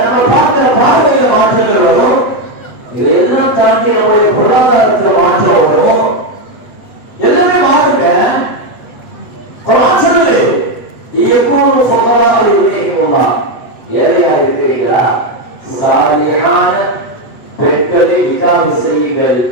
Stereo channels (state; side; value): late; right; 8.1 ms